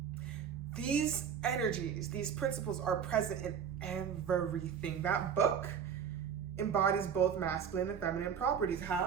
These energies, these principles are present in everything. That book embodies both masculine and feminine properties.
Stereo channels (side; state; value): left; quieter; 7.6 dB